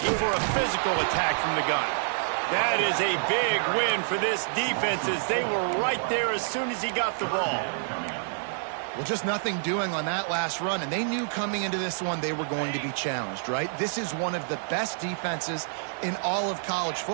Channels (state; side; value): silent; left; digital silence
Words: for a physical attack from the gun. That is a big win for this defense as they were right there as soon as he got the ball. Well, just nothing doing on that last run, and they knew coming into this one they were going to be challenged, right? This is one of the best defenses in all of college